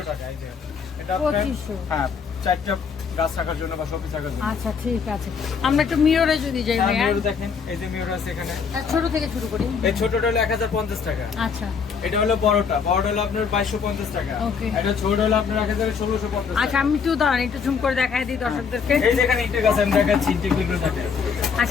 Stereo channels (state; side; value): quieter; right; 6.0 dB